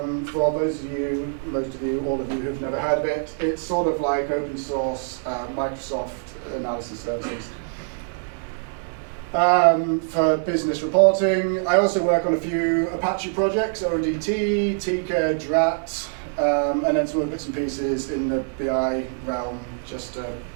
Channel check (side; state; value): left; silent; digital silence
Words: for those of you, most of you, all of you who've never heard of it, it's sort of like open source Microsoft analysis services. For business reporting, I also work on a few Apache projects, ODT, Tika, Drat, and then some other bits and pieces in the BI realm, just